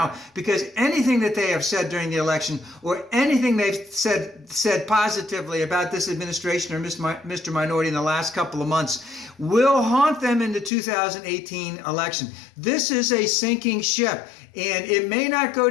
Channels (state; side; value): drops out; right; at 10.7 s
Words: because anything that they have said during the election or anything they've said positively about this administration or Mr. Minority in the last couple of months will haunt them in the 2018 election. This is a sinking ship, and it may not go